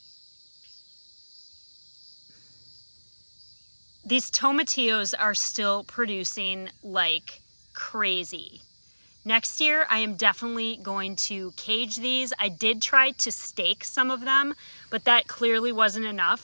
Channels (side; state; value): both; inverted; correlation -1.00